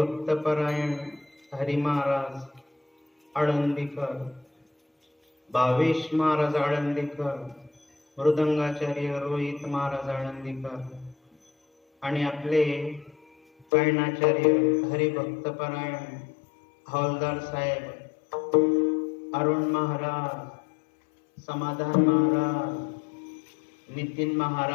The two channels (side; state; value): right; drops out; at 13.7 s